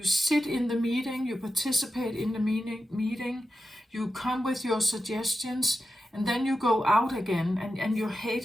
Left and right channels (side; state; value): both; normal; correlation 0.90